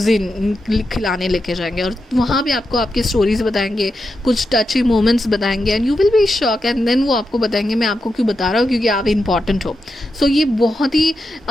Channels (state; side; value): normal; both; correlation 0.87